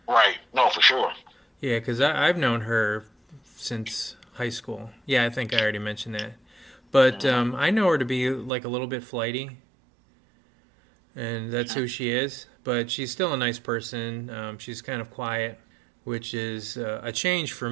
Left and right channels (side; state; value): left; drops out; at 8.5 s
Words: Right. No, for sure. Yeah, because I've known her since high school. Yeah, I think I already mentioned that. But I know her to be like a little bit flighty, and that's who she is. But she's still a nice person. She's kind of quiet, which is a change for